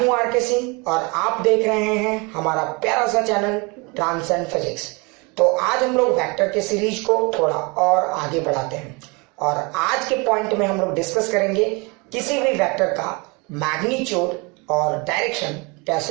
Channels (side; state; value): left; quieter; 28.7 dB